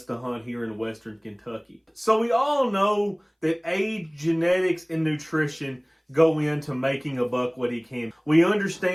to hunt here in western Kentucky. So we all know that age, genetics, and nutrition go into making a buck what he can. We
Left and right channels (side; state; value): both; identical; correlation 1.00